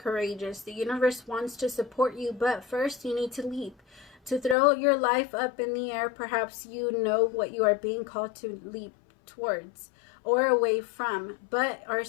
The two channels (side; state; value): right; drops out; at 4.5 s